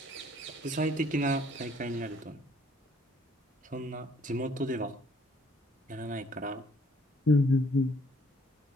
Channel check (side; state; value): both; normal; correlation 0.62